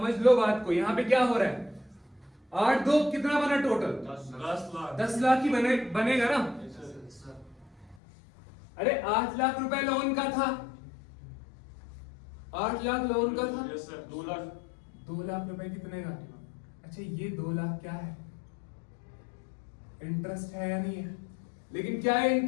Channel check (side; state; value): right; drops out; at 8.0 s